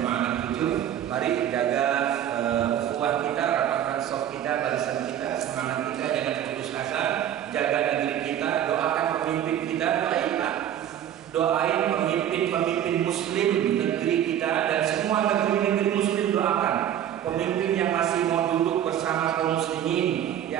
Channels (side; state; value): left; quieter; 10.6 dB